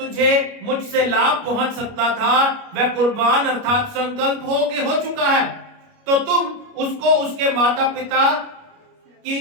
मुझसे लाभ पहुंच सकता था वह कुर्बान अर्थात संकल्प हो चुका है, तो तुम उसको उसके माता पिता की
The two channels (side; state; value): left; late; 29 ms